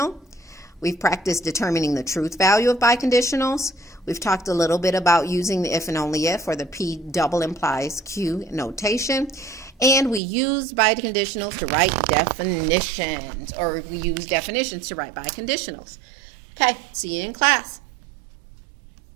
We've practiced determining the truth value of biconditionals. We've talked a little bit about using the if and only if, or the P double implies Q notation. And we used biconditionals to write definitions, or we use definitions to write biconditionals. Okay, see you in class.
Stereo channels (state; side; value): drops out; left; at 10.2 s